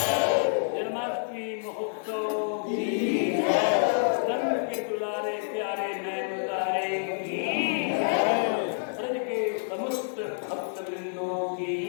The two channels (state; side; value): silent; right; digital silence